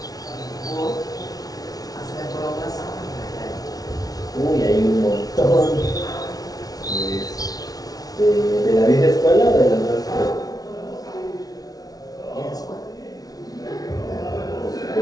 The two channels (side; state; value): right; late; 0.18 ms